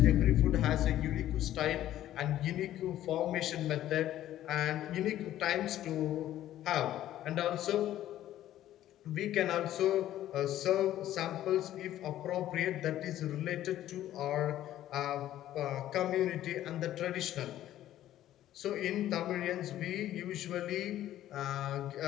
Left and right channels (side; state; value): right; quieter; 12.9 dB